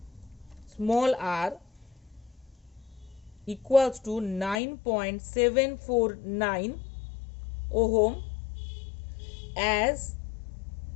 small r equals to 9.749 ohm as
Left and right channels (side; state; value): right; drops out; at 4.6 s